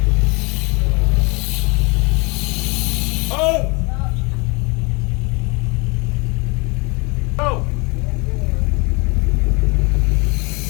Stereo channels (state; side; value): quieter; right; 28.6 dB